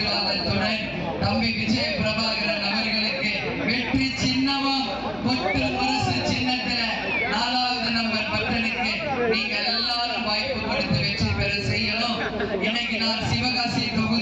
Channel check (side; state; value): left; noise; hum, 21 dB below the sound